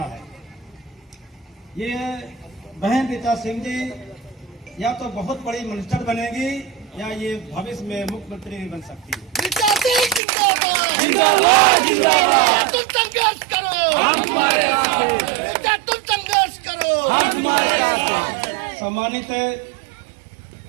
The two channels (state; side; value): drops out; left; at 10.2 s